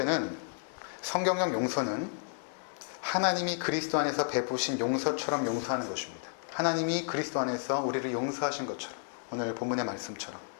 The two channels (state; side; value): silent; right; 56 dB below the other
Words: 성경적 용서는 하나님이 그리스도 안에서 베푸신 용서처럼 용서하는 것입니다. 하나님이 그리스도 안에서 우리를 용서하신 것처럼, 오늘 본문의 말씀처럼.